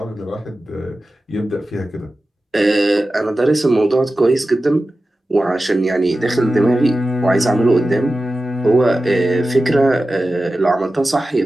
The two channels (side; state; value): both; normal; correlation 0.94